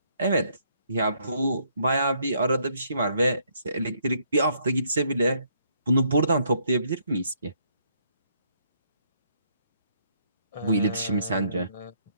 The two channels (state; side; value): inverted; both; correlation -0.70